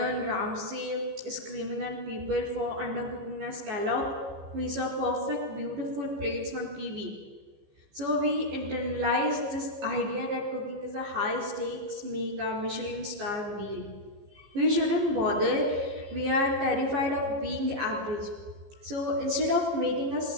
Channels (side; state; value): left; late; 15 ms